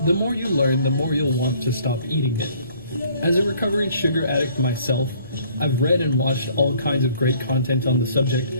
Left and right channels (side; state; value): both; inverted; correlation -0.58